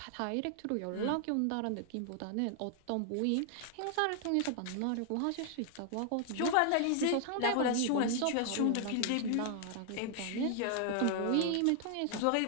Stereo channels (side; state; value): both; different; correlation 0.00